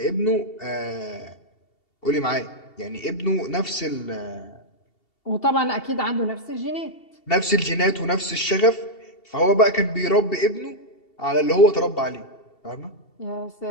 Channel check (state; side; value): late; right; 2.7 ms